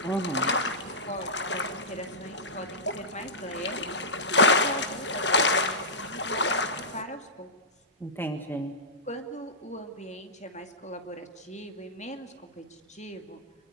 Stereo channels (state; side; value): normal; both; correlation -0.14